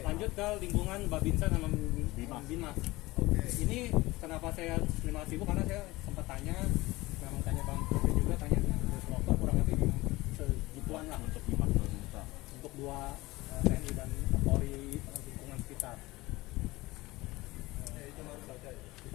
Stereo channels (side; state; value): right; quieter; 20.2 dB